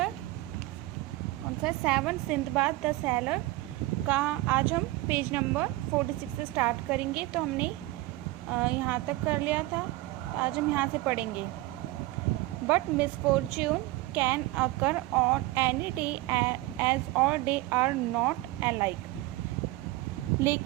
कौन सा है 7 सिंदबाद द सैलर का आज हम पेज नंबर 46 से स्टार्ट करेंगे। तो हमने यहाँ तक कर लिया था, आज हम यहाँ से पढ़ेंगे। But misfortune can occur on any day as all day are not alike.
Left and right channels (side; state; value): left; quieter; 18.6 dB